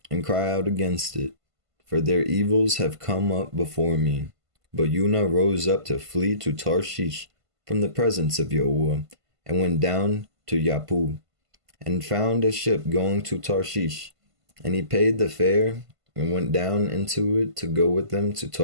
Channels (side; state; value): left; late; 1.5 ms